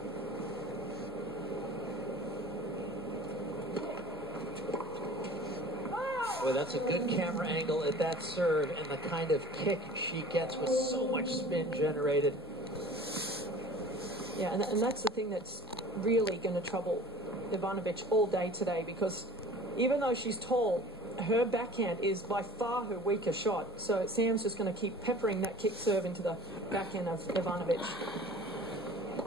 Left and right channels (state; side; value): normal; both; correlation 0.45